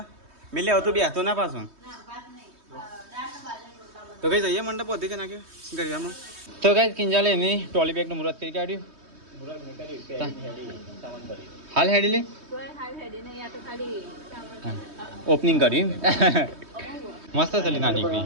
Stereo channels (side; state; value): left; late; 3.2 ms